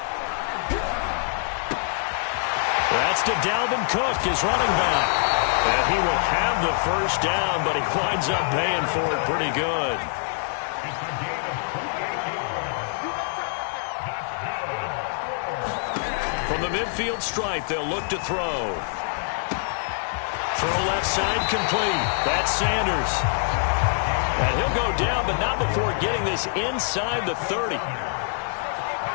That's to Dalvin Cook, his running back. And he will have the first down, but he winds up paying for it pretty good. From the midfield stripe, they'll look to throw. Throw left side complete. That's Sanders. And he'll go down, but not before getting this inside the 30.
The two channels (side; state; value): right; silent; 56 dB below the other